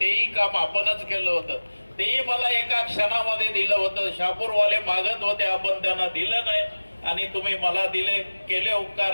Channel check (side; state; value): both; inverted; correlation -1.00